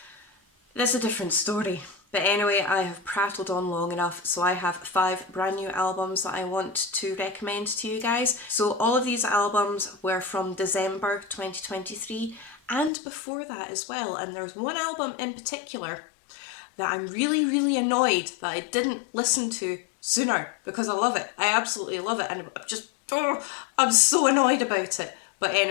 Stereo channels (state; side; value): drops out; right; at 12.9 s